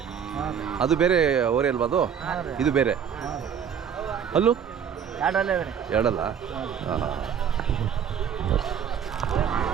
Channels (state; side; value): quieter; left; 8.0 dB